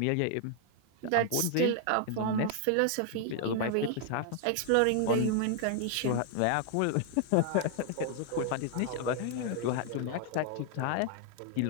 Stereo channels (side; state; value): both; different; correlation 0.00